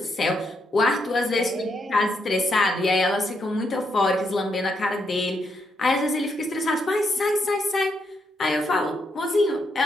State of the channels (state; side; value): normal; both; correlation 0.79